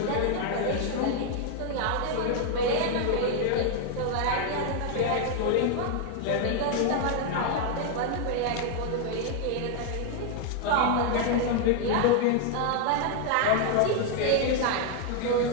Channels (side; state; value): both; different; correlation 0.00